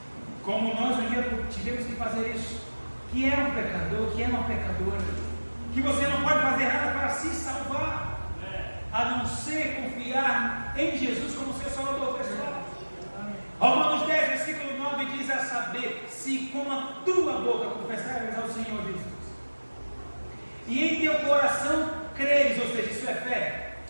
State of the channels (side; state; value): both; inverted; correlation -1.00